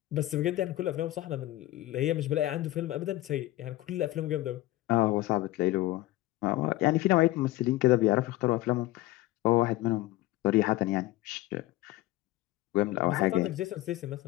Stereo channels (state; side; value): quieter; right; 16.9 dB